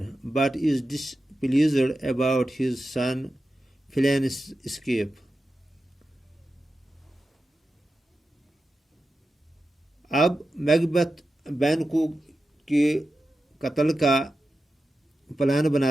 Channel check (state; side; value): normal; both; correlation 0.92